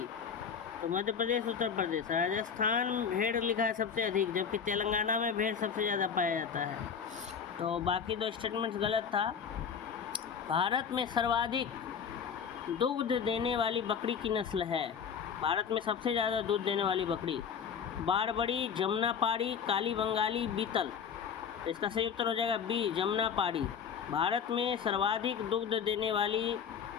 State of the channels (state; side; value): quieter; right; 7.0 dB